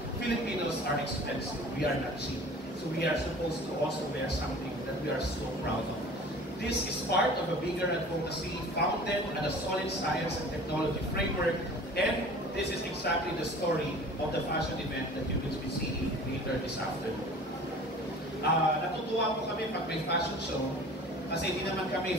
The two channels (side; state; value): both; normal; correlation 0.44